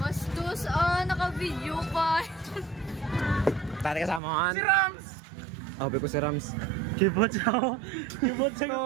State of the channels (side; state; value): left; drops out; at 4.2 s